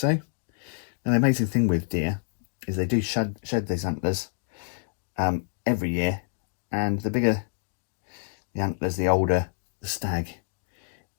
Now the amazing thing with deer is they do shed these antlers every year, and the bigger the antlers, the older the stag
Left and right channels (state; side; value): silent; right; 60 dB below the other